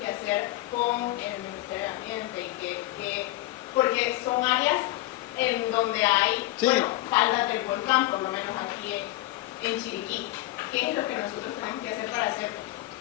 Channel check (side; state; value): right; quieter; 17.5 dB